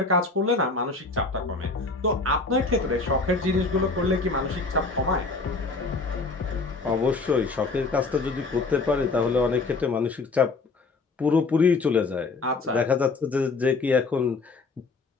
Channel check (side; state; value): right; quieter; 3.8 dB